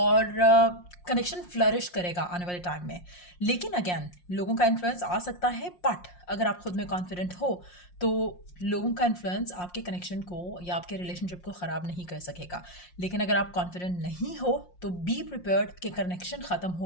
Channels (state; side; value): late; right; 5.6 ms